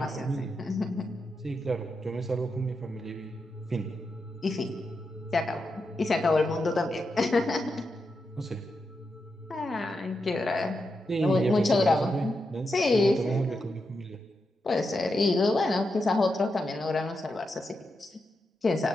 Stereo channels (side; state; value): both; normal; correlation 0.86